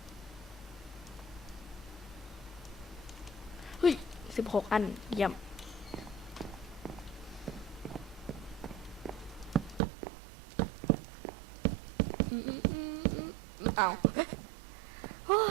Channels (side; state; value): left; drops out; at 9.8 s